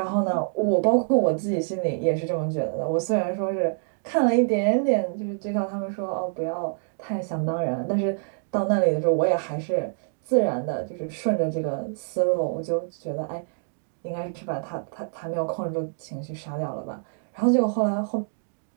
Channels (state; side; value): silent; left; 61 dB below the other